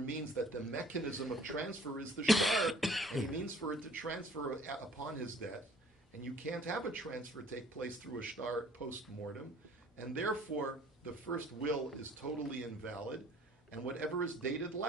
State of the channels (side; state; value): both; normal; correlation 0.53